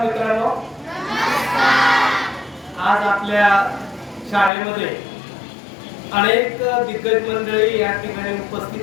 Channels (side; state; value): right; drops out; at 4.5 s